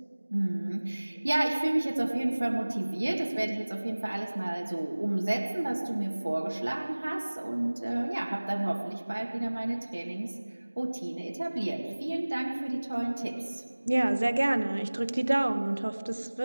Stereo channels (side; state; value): both; inverted; correlation -1.00